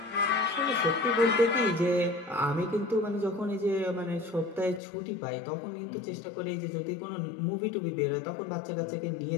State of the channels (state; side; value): drops out; right; at 4.8 s